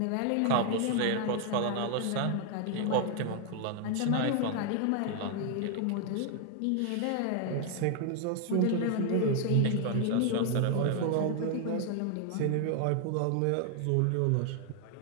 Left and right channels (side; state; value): both; different; correlation 0.00